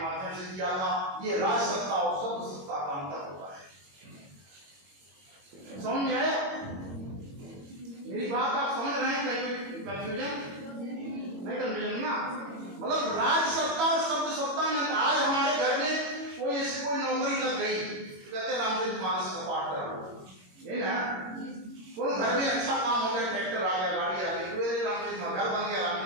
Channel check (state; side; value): late; left; 22 ms